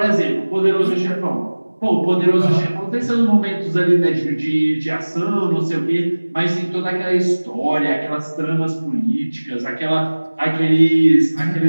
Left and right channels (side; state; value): both; inverted; correlation -1.00